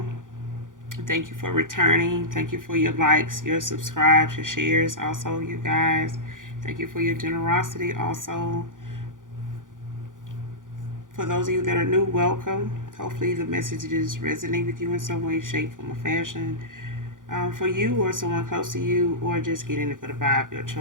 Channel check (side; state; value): left; late; 0.88 ms